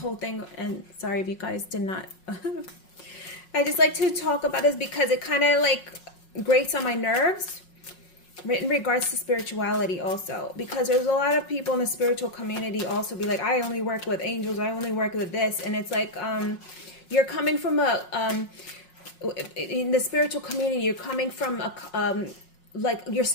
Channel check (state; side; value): late; right; 5.5 ms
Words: thing, and sorry if you guys did not. I just like to talk about this because it kind of like grates on my nerves in regards to spirituality also, because there's a lot of people in the spiritual community also be like, I only work with angels, I only work with this, and it's like you're coming from a in the spiritual community, you're coming from a like you're